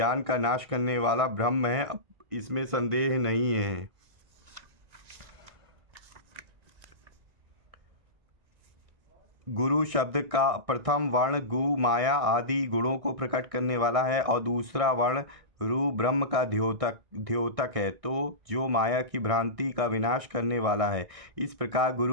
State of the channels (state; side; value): late; left; 1.6 ms